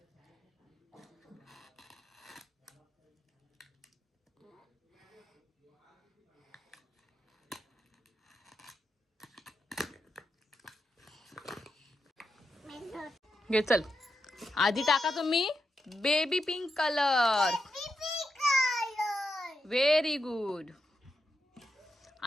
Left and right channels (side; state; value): both; normal; correlation 0.86